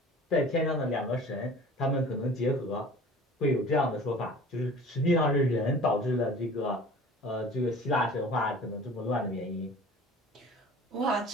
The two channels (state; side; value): normal; both; correlation 0.44